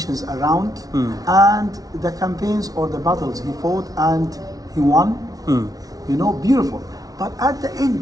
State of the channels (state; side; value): late; left; 0.18 ms